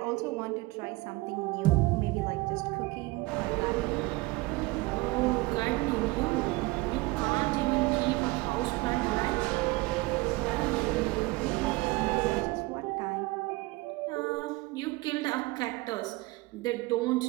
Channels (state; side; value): quieter; left; 22.1 dB